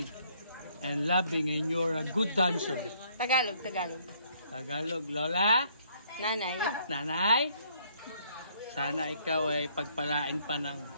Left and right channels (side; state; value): both; inverted; correlation -0.66